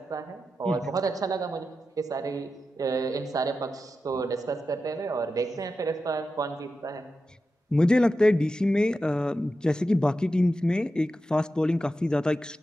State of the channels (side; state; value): both; normal; correlation 0.91